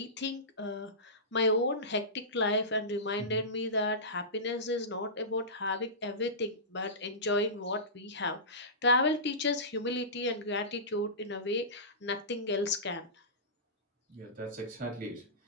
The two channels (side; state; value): both; normal; correlation -0.20